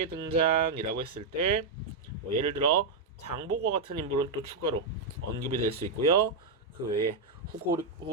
등장이라고 했을 때 예를 들어 장보고 같은 인물은 또 추가로 언급이 될 수 있고요. 그 외에 후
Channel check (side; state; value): left; quieter; 4.1 dB